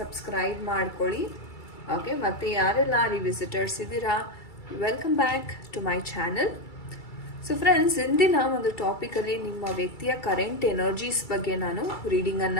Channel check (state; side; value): late; right; 2.3 ms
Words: ಮಾಡ್ಕೊಳ್ಳಿ. ಓಕೆ, ಮತ್ತು ಯಾರೆಲ್ಲ ರಿವಿಸಿಟರ್ಸ್ ಇದ್ದೀರಾ welcome back to my channel. So friends, ಇಂದಿನ ಒಂದು ಟಾಪಿಕಲ್ಲಿ ನಿಮ್ಮ ವ್ಯಕ್ತಿಯ ಕರೆಂಟ್ ಎನರ್ಜೀಸ್ ಬಗ್ಗೆ ನಾನು